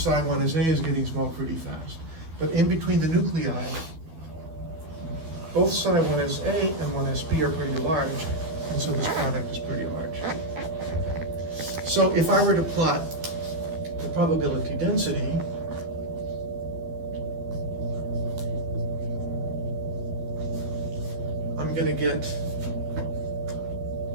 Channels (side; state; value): left; late; 12 ms